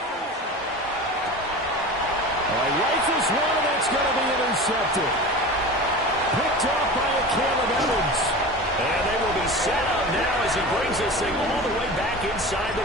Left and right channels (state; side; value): normal; both; correlation 0.32